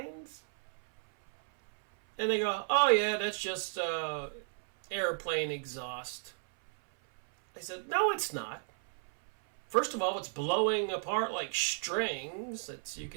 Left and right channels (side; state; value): left; silent; 55 dB below the other